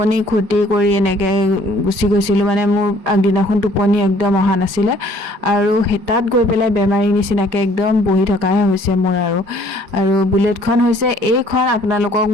ক্ষতি কৰি এনেকৈ গুচি গৈছিলোঁ। মানে মোৰ আগদিনাখন টোপনি একদম অহা নাছিলে, আৰু তাত গৈ পেলাই বেমাৰী নিচিনাকৈ একদম বহি থকাহে হৈছে মোৰ। আৰু বুলেটখন হৈছে এইখন, আপোনালোকক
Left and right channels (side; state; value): left; late; 4.9 ms